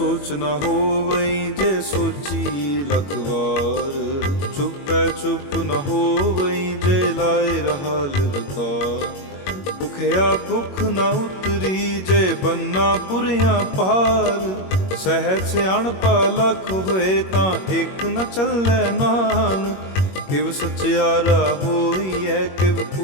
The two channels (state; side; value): late; right; 21 ms